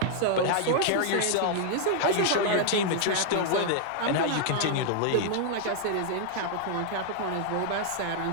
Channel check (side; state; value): both; different; correlation 0.00